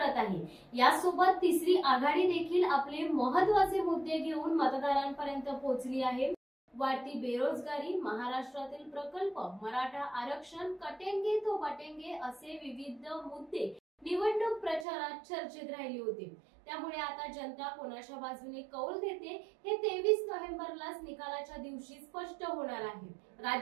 आहे. यासोबत तिसरी आघाडी देखील आपले महत्त्वाचे मुद्दे घेऊन मतदारांपर्यंत पोहोचली आहे. वाढती बेरोजगारी, महाराष्ट्रातील प्रकल्प, मराठा आरक्षण, कटेंगे तो बटेंगे असे विविध मुद्दे निवडणूक प्रचारात चर्चेत राहिले होते. त्यामुळे आता जनता कोणाच्या बाजूने कौल देते हे 23 नोव्हेंबरलाच निकालाच्या दिवशी स्पष्ट होणार आहे.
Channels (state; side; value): drops out; left; at 14.9 s